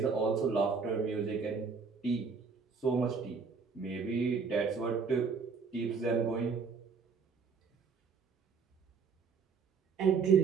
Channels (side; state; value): left; quieter; 5.3 dB